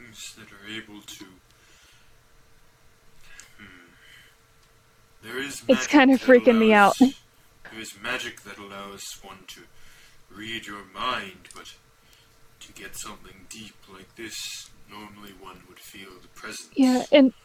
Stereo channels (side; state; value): both; identical; correlation 1.00